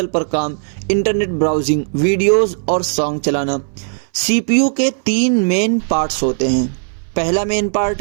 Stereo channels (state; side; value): silent; left; 65 dB below the other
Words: पर काम, इंटरनेट ब्राउजिंग, वीडियोस और सॉन्ग चलाना। CPU के 3 मेन पार्ट्स होते हैं। पहला मेन